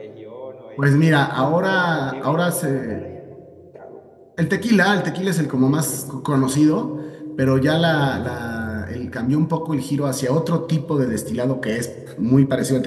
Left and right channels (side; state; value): both; identical; correlation 1.00